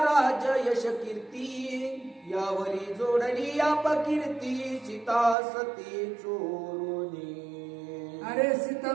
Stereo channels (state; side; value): drops out; left; at 5.4 s